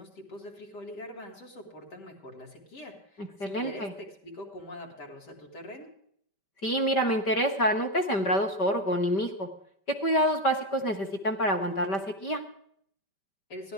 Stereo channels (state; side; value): late; right; 5.1 ms